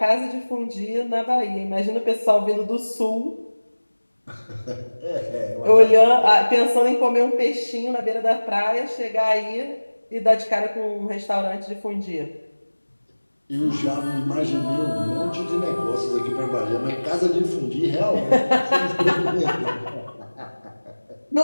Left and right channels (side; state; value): both; inverted; correlation -1.00